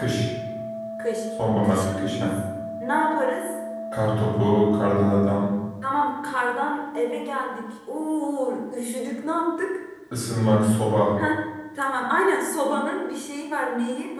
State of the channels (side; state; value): both; identical; correlation 1.00